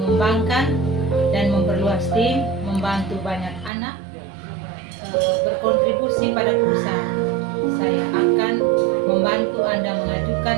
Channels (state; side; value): drops out; left; at 3.7 s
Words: dan memperluas tim, membantu banyak anak berkontribusi pada perusahaan. Saya akan membantu Anda mengajukan